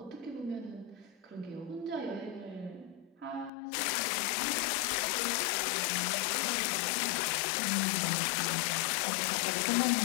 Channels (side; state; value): right; drops out; at 3.5 s